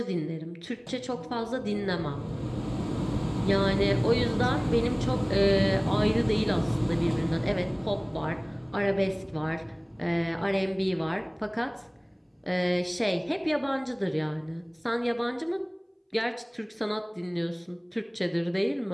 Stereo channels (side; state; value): both; identical; correlation 1.00